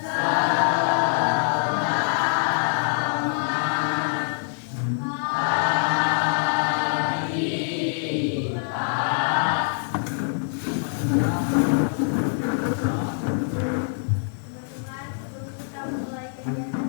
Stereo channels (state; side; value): silent; right; digital silence